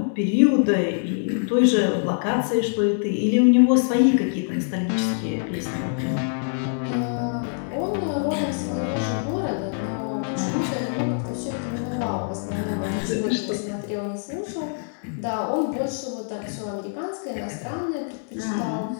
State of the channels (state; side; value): silent; right; 62 dB below the other